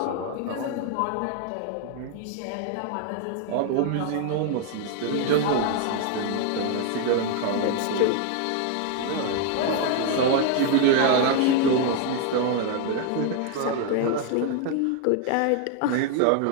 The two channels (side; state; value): both; different; correlation 0.00